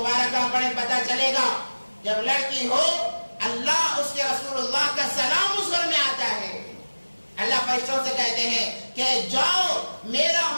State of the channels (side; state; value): both; inverted; correlation -1.00